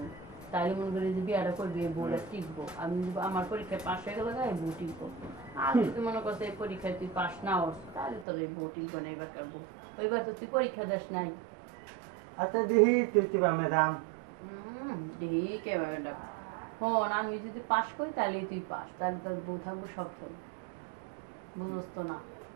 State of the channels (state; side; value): drops out; left; at 8.2 s